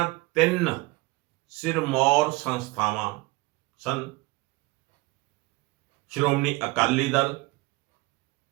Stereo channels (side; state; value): left; quieter; 22.3 dB